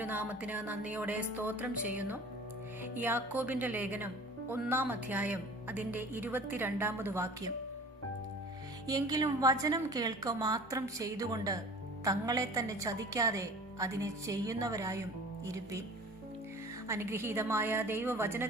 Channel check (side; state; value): both; normal; correlation 0.44